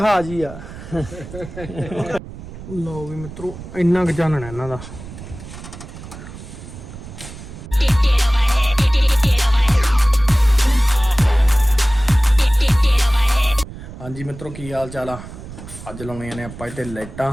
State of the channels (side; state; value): right; noise; rumble, 14 dB below the sound